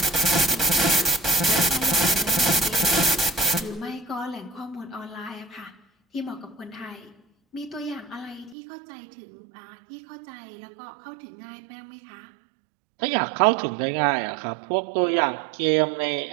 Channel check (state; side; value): drops out; left; at 8.6 s